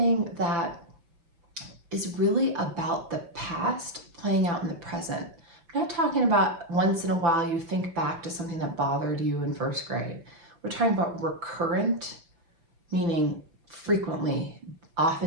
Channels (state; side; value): late; left; 5.9 ms